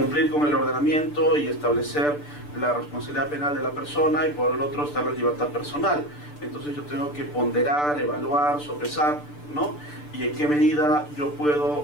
con el ordenamiento y establecer la responsabilidad penal de la persona, y por el otro está la libertad personal. Entonces yo tengo que ponderar, evaluar, sopesar, ¿no? Y en qué medida yo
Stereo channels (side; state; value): right; late; 6.8 ms